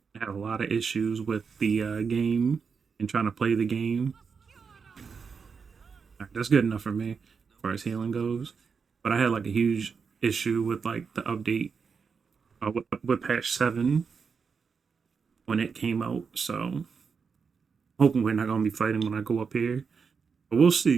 I had a lot of issues with the game and trying to play the game. All right, that's good enough for me as far as healing goes. But I had like a huge issue with like the update with patch 7 when it came out. So hoping we're not gonna be fighting when I go up here, but we'll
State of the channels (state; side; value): quieter; left; 5.7 dB